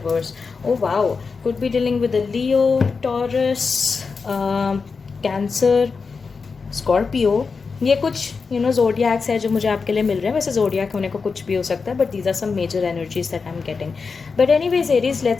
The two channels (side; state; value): right; quieter; 4.9 dB